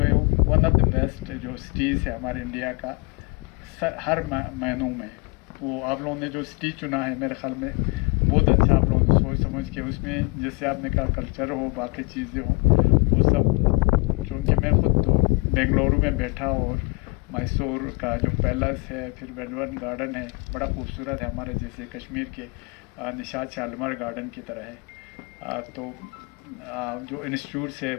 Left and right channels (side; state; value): right; quieter; 28.7 dB